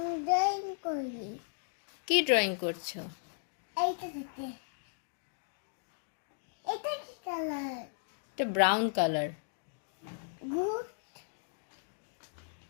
ড্রয়িং করি। কি ড্রয়িং করছো? এইটা থেকে এটা কি কালার? এটা ব্রাউন কালার। গুড।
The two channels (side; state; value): right; silent; digital silence